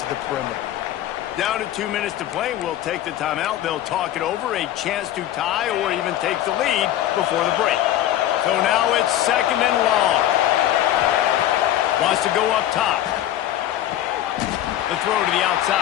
the perimeter. Down to 2 minutes to play. We'll take the timeout. They'll talk it over. A chance to tie or even take the lead before the break. So now it's 2nd and long. Wants to go up top. The throw to the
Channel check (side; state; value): right; quieter; 12.6 dB